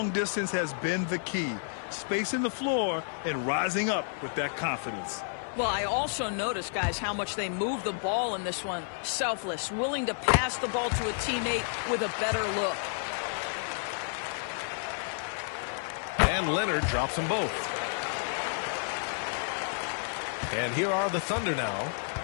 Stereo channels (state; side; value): silent; right; 57 dB below the other